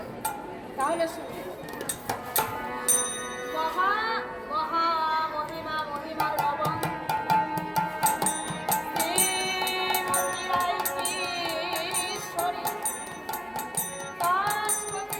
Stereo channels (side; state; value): both; identical; correlation 1.00